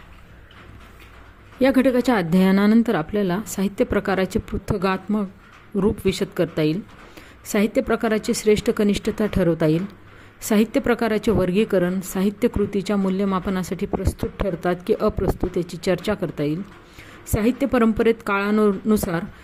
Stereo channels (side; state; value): both; identical; correlation 1.00